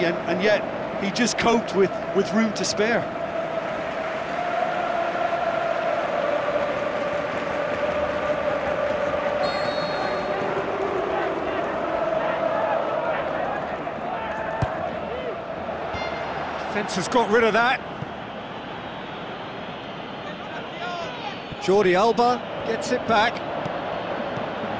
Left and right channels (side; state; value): both; identical; correlation 1.00